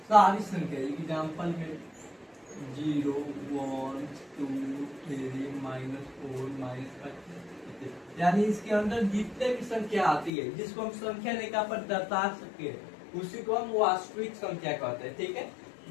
सारी संख्या। एग्जाम्पल में 0, 1, 2, 3, -4, -5, यानी इसके अंदर जितने भी संख्या आती है जिसको हम संख्या रेखा पर दर्शा सके उसी को हम वास्तविक संख्या कहते हैं। ठीक है।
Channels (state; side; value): drops out; right; at 10.3 s